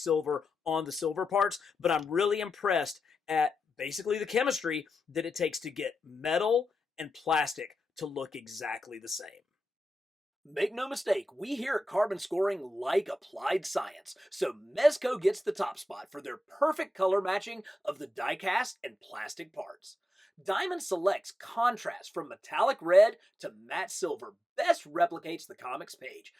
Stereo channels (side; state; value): both; normal; correlation 0.89